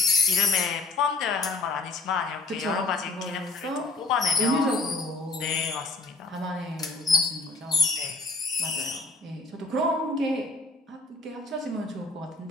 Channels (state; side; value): quieter; right; 3.1 dB